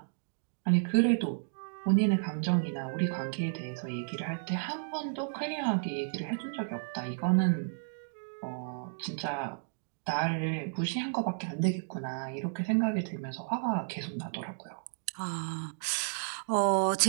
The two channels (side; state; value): left; silent; digital silence